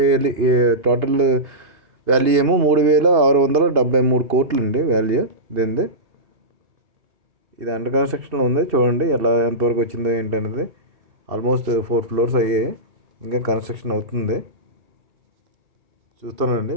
టోటల్ వాల్యూ ఏమో 3,673 కోట్లు అండి వాల్యూ దీనిది. ఇది అండర్ కన్స్ట్రక్షన్లో ఉంది. చూడండి ఎంతవరకు వచ్చిందో ఏంటనేది. ఆల్మోస్ట్ 4 ఫ్లోర్స్ అయ్యాయి, ఇంకా కన్స్ట్రక్షన్ అవుతుంది. చూస్తానండి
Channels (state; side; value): late; left; 2.8 ms